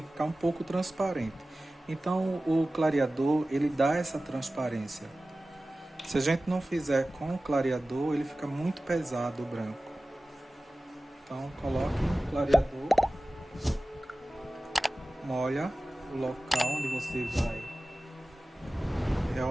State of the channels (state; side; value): normal; both; correlation 0.96